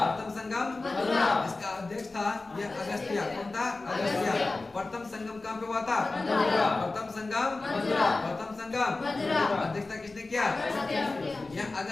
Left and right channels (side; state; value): right; quieter; 3.4 dB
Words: प्रथम संगम मदुरा। इसका अध्यक्ष था यह अगस्त्य। कौन था? अगस्त्य। प्रथम संगम कहाँ पे हुआ था? मदुरा। प्रथम संगम मदुरा, प्रथम संगम संगम मदुरा। अध्यक्षता किसने किया? यह